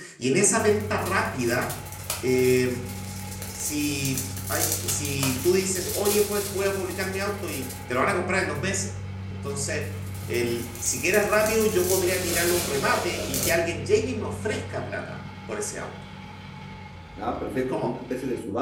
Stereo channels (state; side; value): identical; both; correlation 1.00